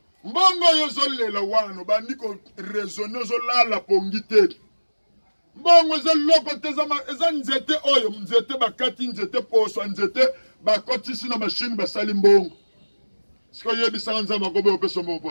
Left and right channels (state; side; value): inverted; both; correlation -1.00